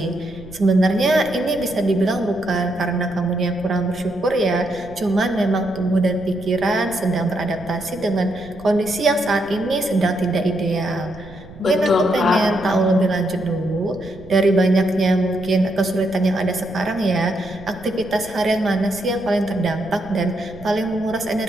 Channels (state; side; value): noise; right; rumble, 19 dB below the sound